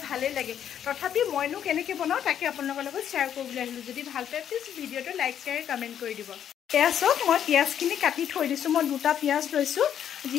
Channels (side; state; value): right; quieter; 9.5 dB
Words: ভালে লাগে তথাপি মইনো কেনেকৈ বনাও তাকে আপোনালোকৰ লগত শ্বেয়াৰ কৰিবলৈ আহিলো যদি ভাল পায় প্লিজ ভিডিঅ'টো লাইক শ্বেয়াৰ কমেণ্ট কৰি দিব পিয়াজক মই পিয়াজখিনি কাটি থৈ দিছোঁ মই দুটা পিয়াজ লৈছোঁ